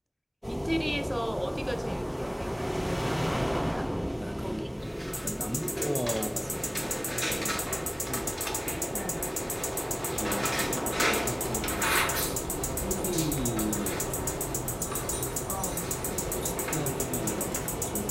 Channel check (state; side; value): identical; both; correlation 1.00